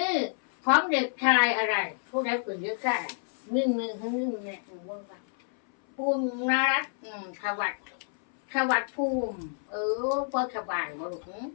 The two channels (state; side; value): silent; right; 59 dB below the other